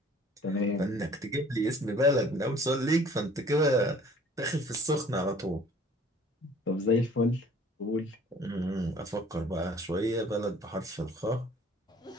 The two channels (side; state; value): both; normal; correlation 0.53